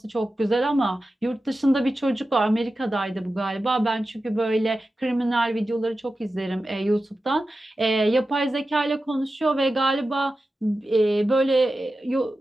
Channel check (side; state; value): both; normal; correlation 0.93